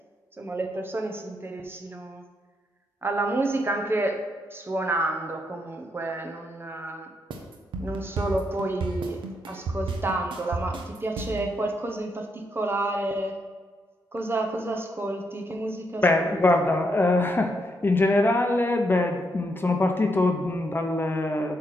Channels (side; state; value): both; normal; correlation 0.78